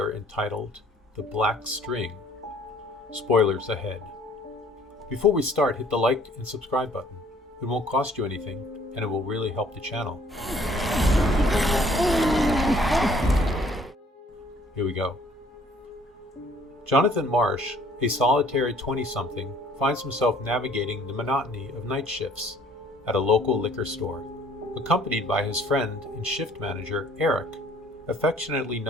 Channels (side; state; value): both; normal; correlation 0.58